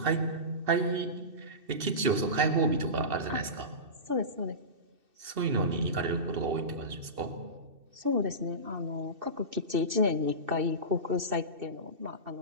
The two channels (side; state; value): left; late; 2.6 ms